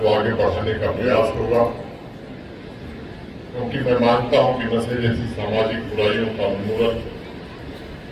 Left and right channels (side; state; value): both; identical; correlation 1.00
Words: आगे बढ़ाने का प्रयास होगा, क्योंकि मैं मानता हूं कि नशे जैसी सामाजिक बुराइयों का उन्मूलन